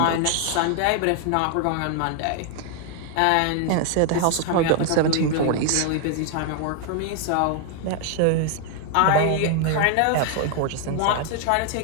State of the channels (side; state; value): both; different; correlation 0.00